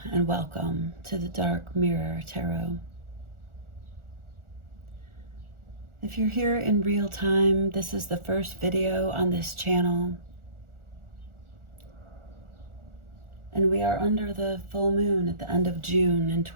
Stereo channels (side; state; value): left; late; 1.4 ms